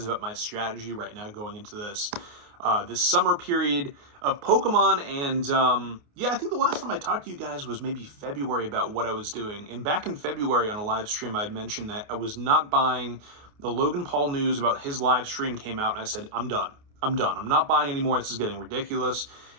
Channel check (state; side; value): late; left; 28 ms